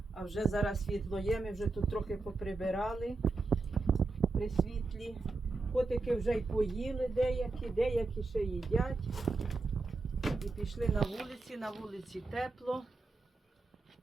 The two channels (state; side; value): quieter; left; 3.5 dB